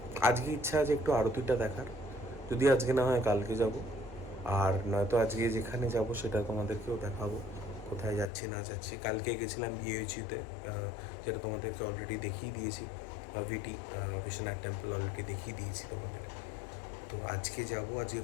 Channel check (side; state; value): right; drops out; at 8.3 s